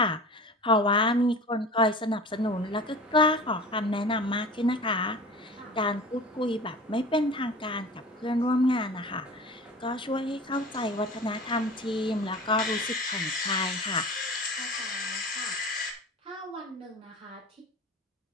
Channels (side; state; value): both; normal; correlation 0.37